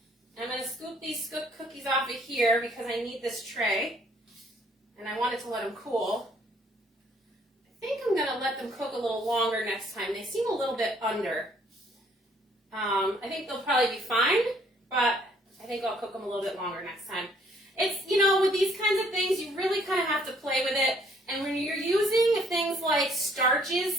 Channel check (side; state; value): both; normal; correlation 0.63